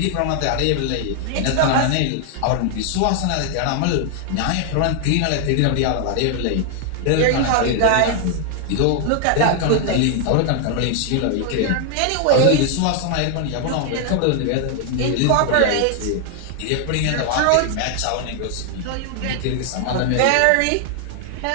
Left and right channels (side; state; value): both; different; correlation 0.00